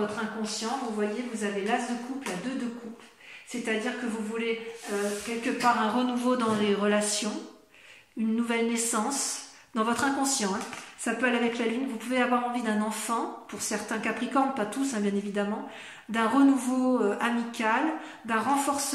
inconscient, vous voyez, vous avez l'as de coupe, la 2 de coupe. C'est-à-dire que vous voulez quelque part un renouveau dans les relations, une nouvelle naissance, dans votre inconscient, hein. Ça peut aller avec la lune. Vous pouvez avoir envie d'un enfant, pour certains capricornes, pas tous, hein, bien évidemment, d'un renouveau amical, d'un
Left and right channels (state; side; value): identical; both; correlation 1.00